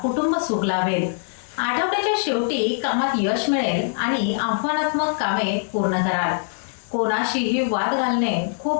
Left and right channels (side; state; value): right; silent; digital silence